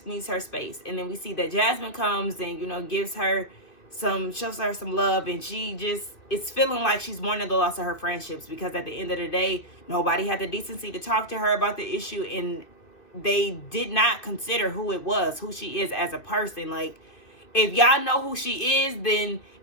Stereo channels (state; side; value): late; right; 2.6 ms